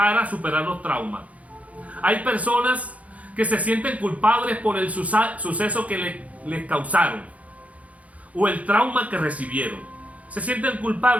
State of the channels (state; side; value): late; left; 0.068 ms